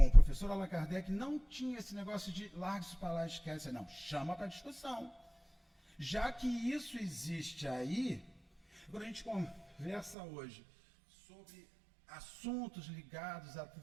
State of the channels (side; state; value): left; drops out; at 10.2 s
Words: o professor Allan Kardec não tinha esse negócio de larga isso para lá, esquece. Não, chama para discussão. Já que isso existe aí, quando a gente conversa hoje sobre assuntos ligados à